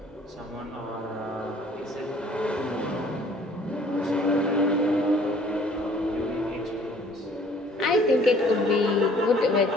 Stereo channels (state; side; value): normal; both; correlation 0.56